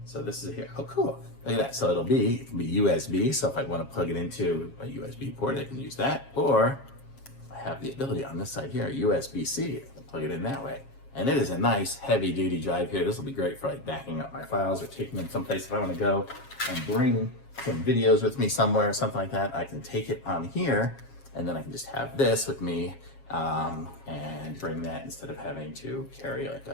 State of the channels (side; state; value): right; late; 7.3 ms